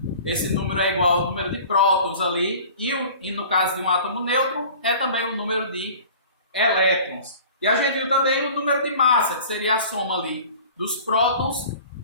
esse número é igual ao número de prótons ali, e no caso de um átomo neutro é também o número de elétrons. E a gente viu também o número de massa, que seria a soma ali dos prótons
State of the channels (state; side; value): inverted; both; correlation -0.44